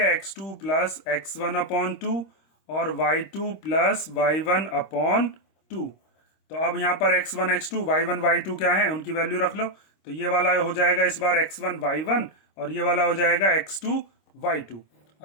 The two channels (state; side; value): late; right; 26 ms